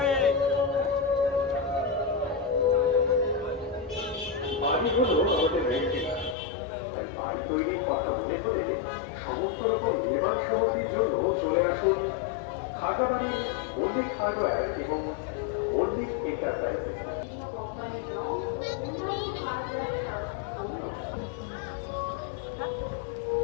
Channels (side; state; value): right; drops out; at 6.4 s